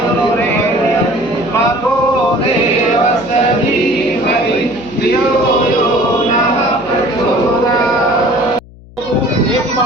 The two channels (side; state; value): left; noise; hum, 22 dB below the sound